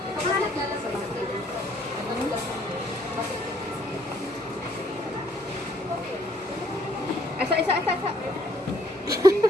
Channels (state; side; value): normal; both; correlation 0.65